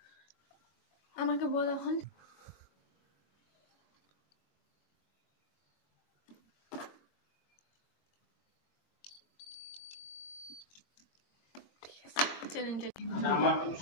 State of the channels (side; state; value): right; late; 22 ms